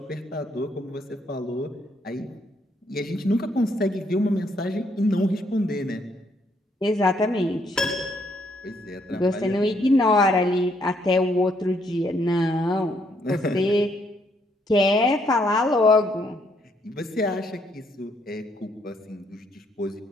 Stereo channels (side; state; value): both; normal; correlation 0.71